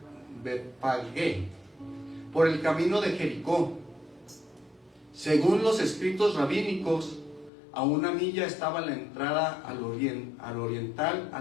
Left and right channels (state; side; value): drops out; right; at 7.5 s